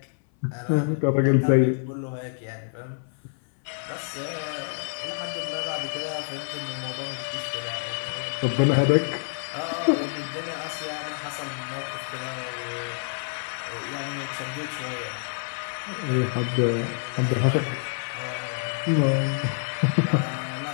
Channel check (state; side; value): silent; right; 60 dB below the other